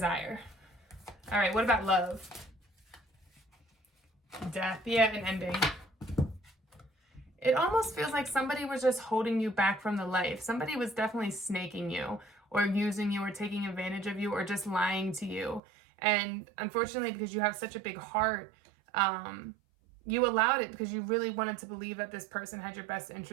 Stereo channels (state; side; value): drops out; left; at 15.6 s